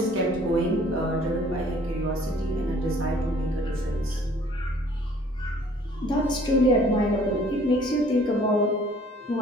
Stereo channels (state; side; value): normal; both; correlation 0.56